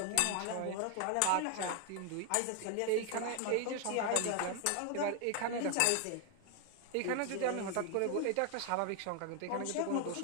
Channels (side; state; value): both; different; correlation 0.00